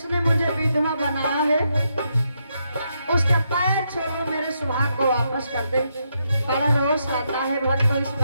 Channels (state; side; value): inverted; both; correlation -0.80